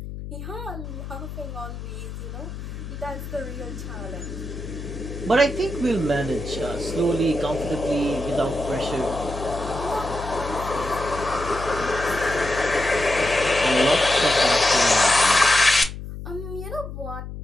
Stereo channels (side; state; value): left; noise; hum, 9 dB below the sound